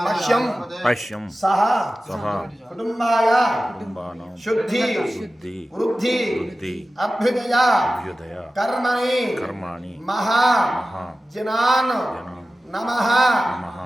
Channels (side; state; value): both; normal; correlation 0.95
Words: पश्यं पश्यं सः सः कुटुम्बाय कुटुम्बानां शुद्धि शुद्धि वृद्धि वृद्धि अभ्युदय अभ्युदय कर्मणि कर्माणि महा महा जनान् जनान् नमः नमः